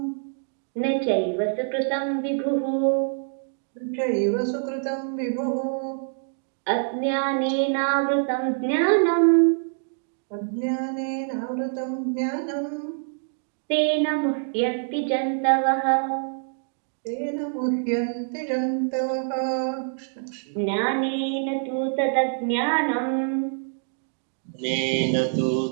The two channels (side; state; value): left; silent; digital silence